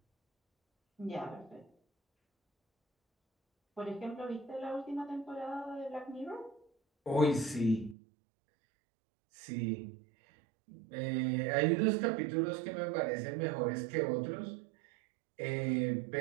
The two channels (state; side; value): drops out; left; at 8.0 s